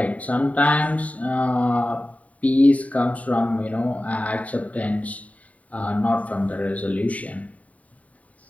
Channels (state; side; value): late; right; 0.069 ms